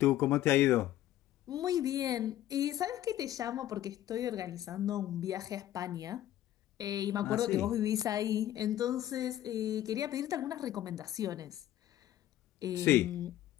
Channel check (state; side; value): quieter; right; 13.2 dB